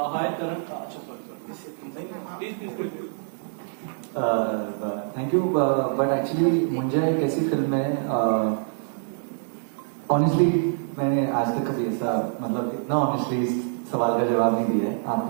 हाय करण, अच्छा sorry thank you, but actually Munjya एक ऐसी फिल्म है, ऑनेस्टली मैंने आज तक कभी ऐसा मतलब इतना ऑनेस्टली इस सवाल का जवाब नहीं दिया है। आप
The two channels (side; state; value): left; silent; 61 dB below the other